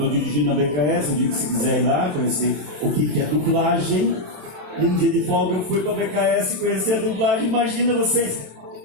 dirigindo na BKS, eu digo que se quiser ir lá, conhecer o que é dublagem. E um dia de folga eu fui pra BKS conhecer a dublagem. Imagina vocês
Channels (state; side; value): late; left; 27 ms